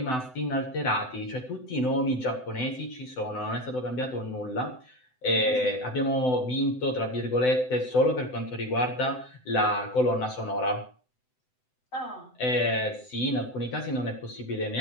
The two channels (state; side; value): late; right; 7.9 ms